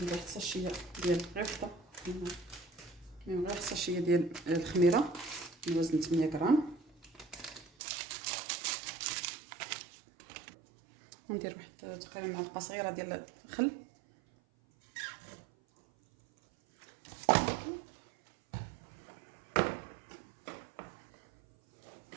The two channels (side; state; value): left; drops out; at 7.7 s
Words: واحد الساشيه ديال غيفطه، غير الساشيه ديال الخميره بوزن 8 غرام. ندير واحد تقريبا معلقه صغيره ديال الخل،